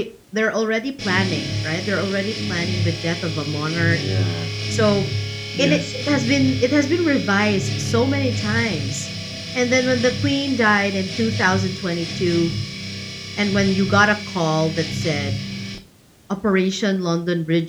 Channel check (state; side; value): identical; both; correlation 1.00